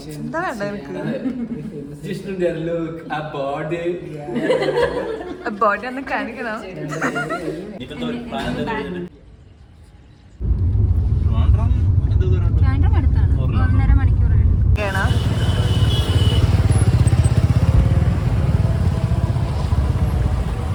എന്താ വേണ്ട എനിക്ക്? ബോഡി ഒന്ന് കാണിക്കണം. അടുത്താണ്, 1.5 മണിക്കൂർ.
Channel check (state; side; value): identical; both; correlation 1.00